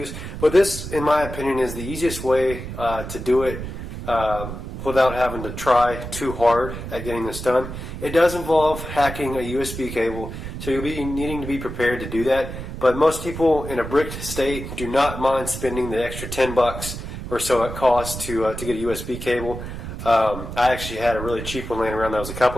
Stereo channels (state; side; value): noise; right; rumble, 8 dB below the sound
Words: but this, in my opinion, is the easiest way to do it without having to try too hard at getting this done. It does involve hacking a USB cable, so you'll be needing to be prepared to do that. But most people in a bricked state do not mind spending the extra $10 or so it costs to get a USB cable. I actually had a really cheap one laying around that was a